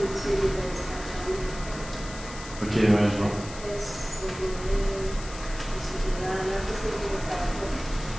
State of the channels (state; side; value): noise; left; hiss, 14 dB below the sound